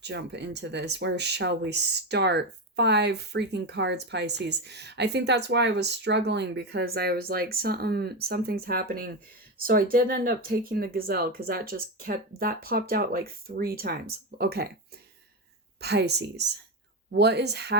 jump into this? Where shall we start? 5 freaking cards, Pisces. I think that's why I was struggling, because I was like, something's happening. So I did end up taking the gazelle because that popped out like 3 times. Okay. Pisces. What is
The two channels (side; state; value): both; normal; correlation 0.14